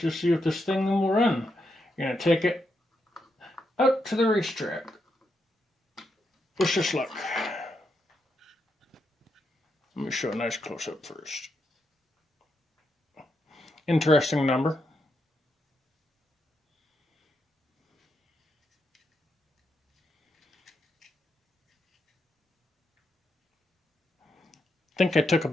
see if this thing will run. You're going to take it out to the racetrack. Wish us luck. Let me show a nice close-up first. Interesting number. I think I took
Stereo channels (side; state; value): both; normal; correlation 0.83